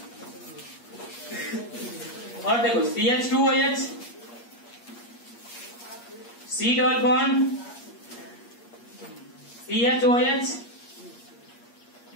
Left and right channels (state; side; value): late; right; 8.5 ms